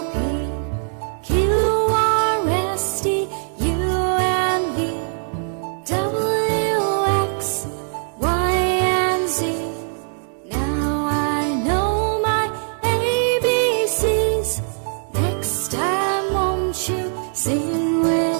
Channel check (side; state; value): left; silent; digital silence